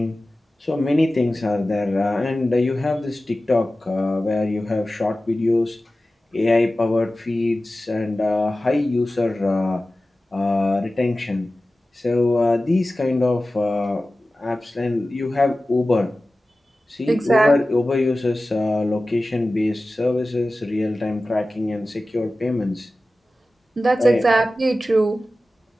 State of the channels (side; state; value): both; normal; correlation 0.96